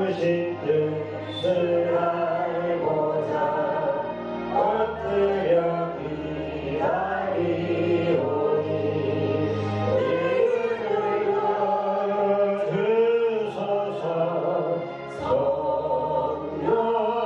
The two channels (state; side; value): identical; both; correlation 1.00